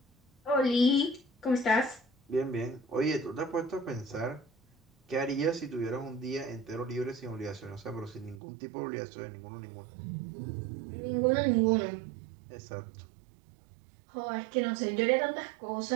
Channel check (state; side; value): drops out; left; at 8.4 s